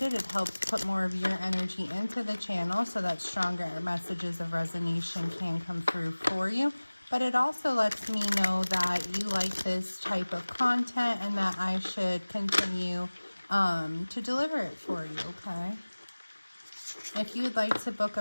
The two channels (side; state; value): both; inverted; correlation -1.00